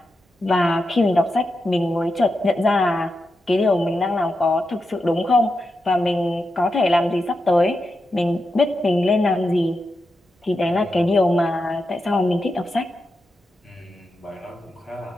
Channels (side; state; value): both; normal; correlation 0.88